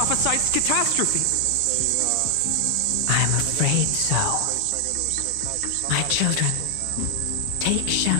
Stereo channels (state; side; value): different; both; correlation 0.00